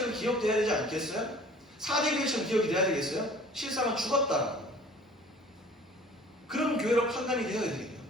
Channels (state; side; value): normal; both; correlation 0.49